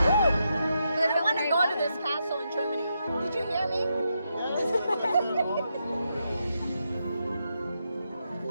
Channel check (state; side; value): inverted; both; correlation -0.83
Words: I want to go to this castle in Germany. Did you hear me?